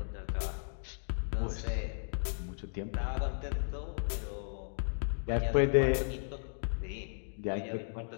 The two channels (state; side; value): silent; right; digital silence